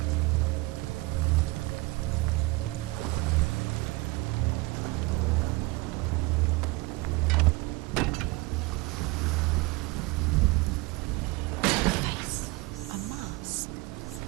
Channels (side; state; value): left; quieter; 23.1 dB